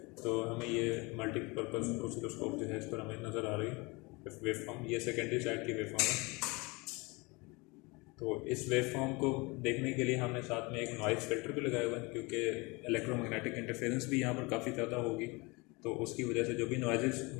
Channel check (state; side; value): quieter; right; 26.1 dB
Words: तो हमें ये मल्टीपर्पज़ ऑसिलोस्कोप जो है इस पर हमें नज़र आ रही है वेवफॉर्म। ये सेकेंडरी साइड की वेवफॉर्म है। तो इस वेवफॉर्म को देखने के लिए हमने साथ में एक नॉइज़ फिल्टर भी लगाया हुआ है, क्योंकि इलेक्ट्रोमैग्नेटिक इंटरफेरेंस भी यहाँ पर काफ़ी ज़्यादा होगी, तो उसकी वजह से जो भी नॉइज़ेस